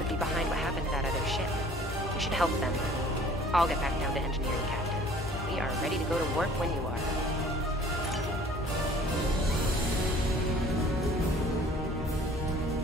be behind what happened to that other ship. We should help them. I'll get back down to engineering, Captain. We are ready to go to warp when you are.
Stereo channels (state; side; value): normal; both; correlation 0.51